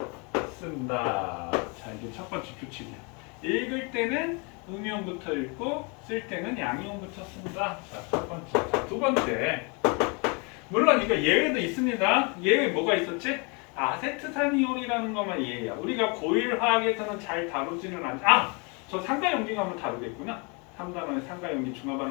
쓴다. 자, 이게 첫 번째 규칙이야. 읽을 때는 음이온부터 읽고 쓸 때는 양이온부터 쓴다. 자, 첫 번째. 자, 두 번째. 물론 이거 예외도 있습니다. 예외 뭐가 있었지? 아세트산이온이라는 것만 예외야. 우리가 고일 화학에서는 잘 다루지는 않지. 저 상가연기 가면 다루겠구나. 3단원에 상가연기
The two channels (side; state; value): right; quieter; 32.0 dB